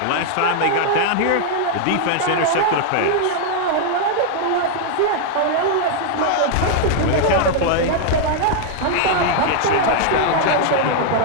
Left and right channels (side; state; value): both; different; correlation -0.01